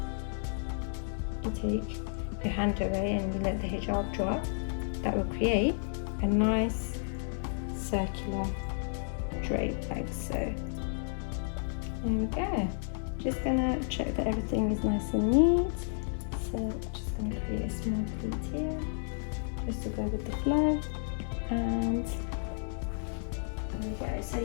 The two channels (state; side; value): silent; right; 56 dB below the other